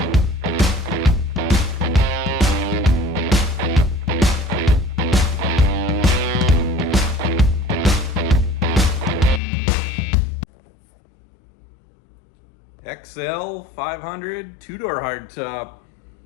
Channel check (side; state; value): right; drops out; at 9.4 s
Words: XL 500 two-door hardtop.